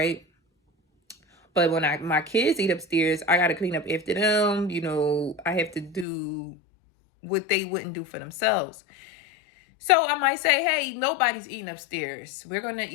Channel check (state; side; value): drops out; right; at 6.1 s